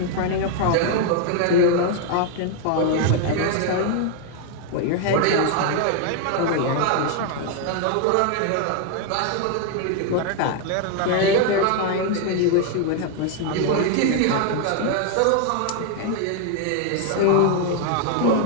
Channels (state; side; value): different; both; correlation 0.00